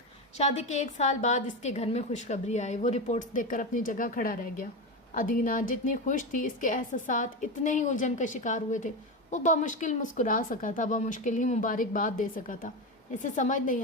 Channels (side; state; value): both; normal; correlation 0.17